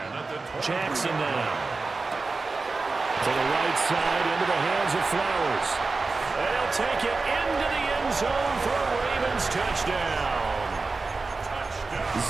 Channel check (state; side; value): quieter; left; 3.9 dB